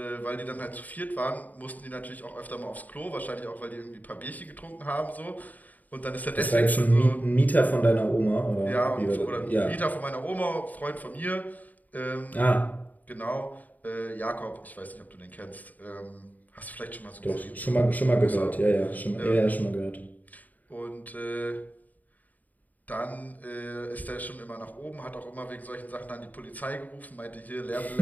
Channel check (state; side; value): late; right; 0.079 ms